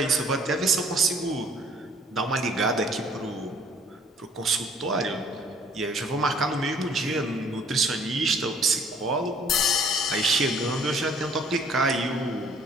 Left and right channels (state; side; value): normal; both; correlation 0.57